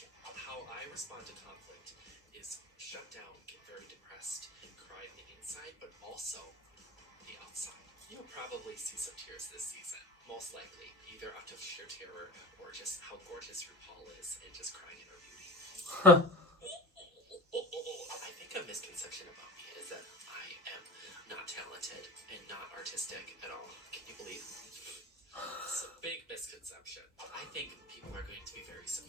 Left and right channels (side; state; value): both; normal; correlation 0.33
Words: How I respond to conflict is shut down, get very depressed, and cry on the inside, but also the outside. You'll probably see some tears this season, most likely, either out of sheer terror or just how gorgeous RuPaul is and just crying in her beauty. I think a misconception about me is that I am not talented and not artistic at all. Can you believe? It's a big misconception. I think people are going to be very